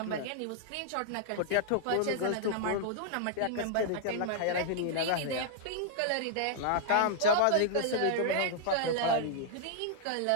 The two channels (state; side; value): different; both; correlation -0.01